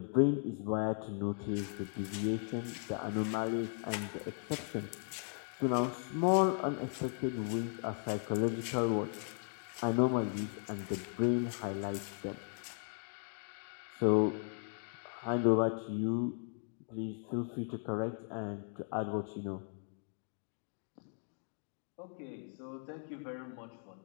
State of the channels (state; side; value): silent; right; 53 dB below the other